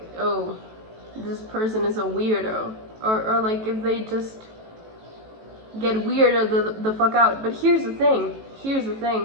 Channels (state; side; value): late; left; 18 ms